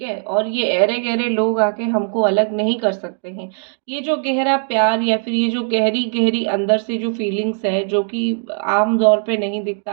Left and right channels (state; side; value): silent; left; 67 dB below the other